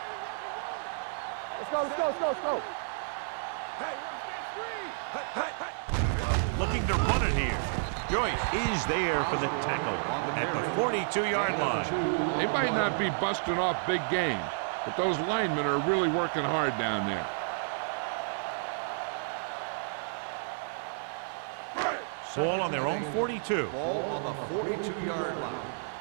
Let's go. Hey, watch that screen. Looking to run it here. Joyce is there for the tackle at the 42-yard line. They might not be busting off big games, but those linemen are really working hard down there. Ball on their own 42. Ball on the 42-yard line.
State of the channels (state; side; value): silent; left; digital silence